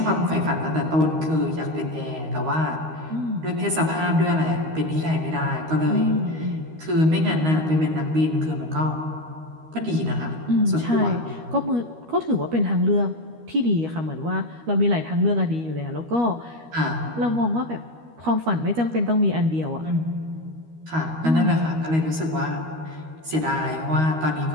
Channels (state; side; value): late; left; 13 ms